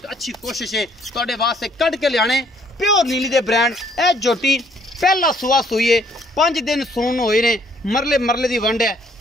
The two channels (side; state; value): both; normal; correlation 0.64